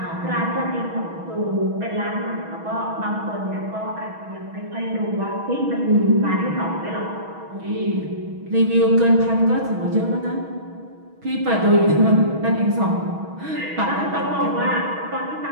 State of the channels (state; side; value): late; left; 6.2 ms